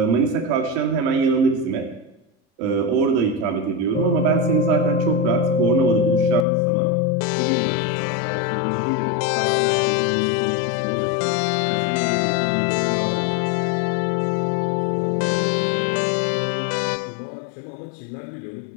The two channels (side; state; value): right; drops out; at 6.5 s